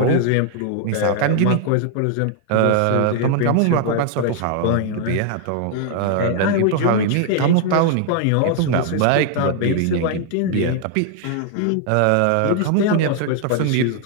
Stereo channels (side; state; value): both; different; correlation 0.00